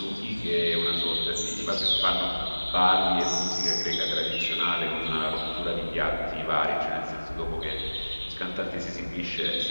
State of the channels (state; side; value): inverted; both; correlation -1.00